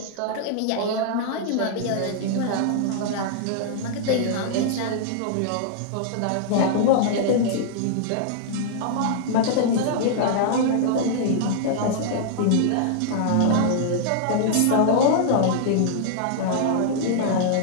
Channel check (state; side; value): different; both; correlation -0.01